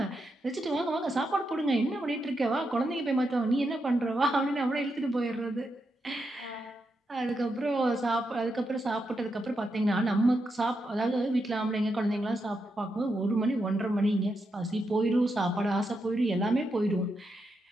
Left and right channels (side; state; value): both; normal; correlation 0.84